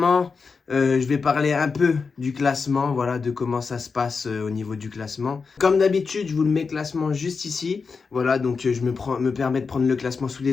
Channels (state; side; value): quieter; right; 5.0 dB